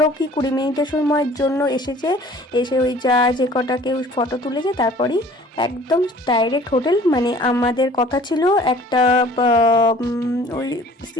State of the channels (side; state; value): both; normal; correlation 0.50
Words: কি 20 মিনিটের সময়ের জন্য এসে ওই যে কটা কেউ ফটো তুলেছে তারপরেই একদম ডাইরেক্ট হোটেল। মানে আমাদের কথা ছিল একটা ওই